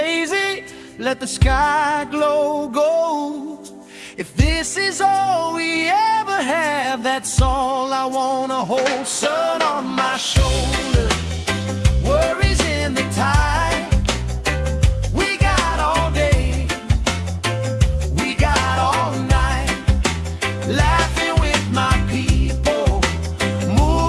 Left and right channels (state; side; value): identical; both; correlation 1.00